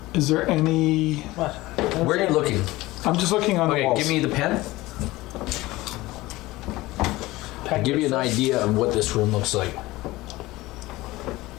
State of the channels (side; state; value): right; quieter; 19.2 dB